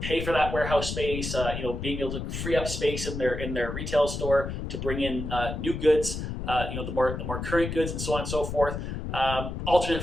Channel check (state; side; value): noise; left; rumble, 5 dB below the sound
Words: for that warehouse space. Being able to free up space in their retail store to bring in new goods. The more current goods and so on and so forth.